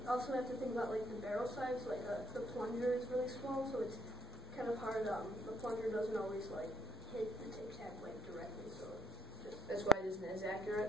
also have to think about like the barrel size. Like the plunger is really small, so it's kind of hard. The plunger doesn't always like hit the Tic Tac like directly, so that's why it isn't as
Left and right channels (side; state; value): both; normal; correlation 0.68